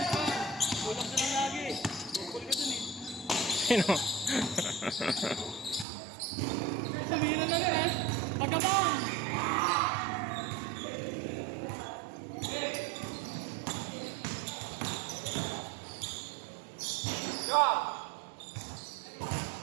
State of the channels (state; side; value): drops out; left; at 5.9 s